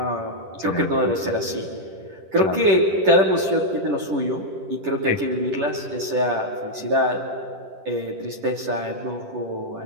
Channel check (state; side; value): late; left; 10 ms